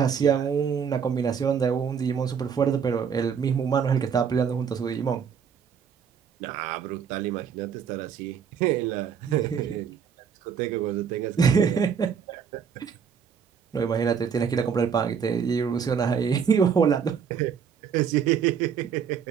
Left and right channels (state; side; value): quieter; left; 7.1 dB